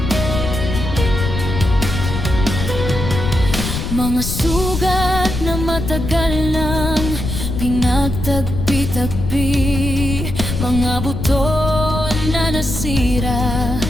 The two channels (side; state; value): left; noise; rumble, 4 dB below the sound